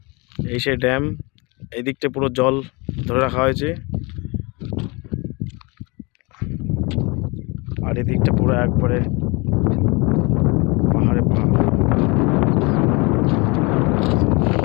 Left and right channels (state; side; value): quieter; right; 27.4 dB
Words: এই সেই ড্যাম। এই দিকটা পুরো জল ধরে রাখা হয়েছে, আর এই দিকটা পুরো একবারে পাহাড়ে পাহাড়।